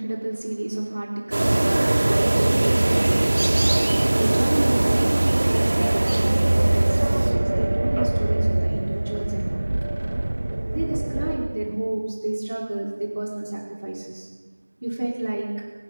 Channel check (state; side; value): inverted; both; correlation -1.00